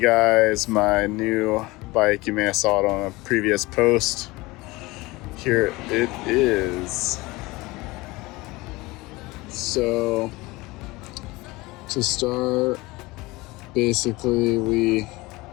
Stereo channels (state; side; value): quieter; right; 21.7 dB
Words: guys my new bike. You may have saw it on a previous post. Here it is. So to start, basically we